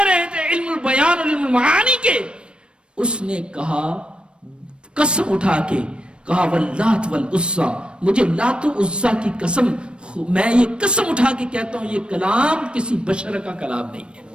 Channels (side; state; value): left; late; 0.056 ms